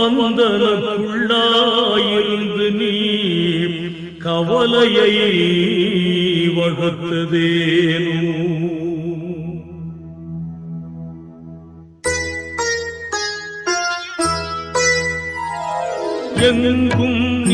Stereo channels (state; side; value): identical; both; correlation 1.00